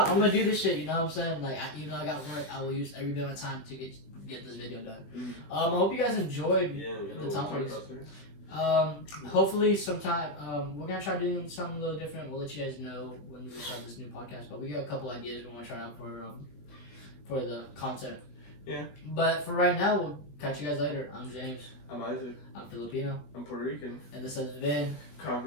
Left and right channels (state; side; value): late; right; 20 ms